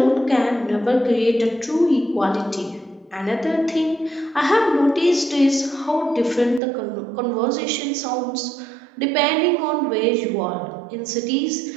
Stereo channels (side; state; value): left; drops out; at 6.6 s